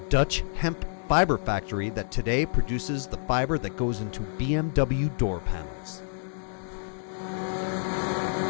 hemp fiber factory that today produces the fiber that goes into BMW door panels.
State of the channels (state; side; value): silent; right; digital silence